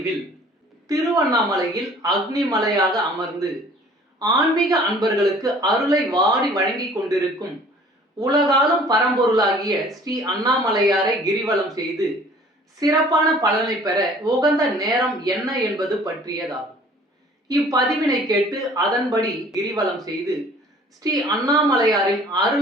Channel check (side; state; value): both; normal; correlation 0.52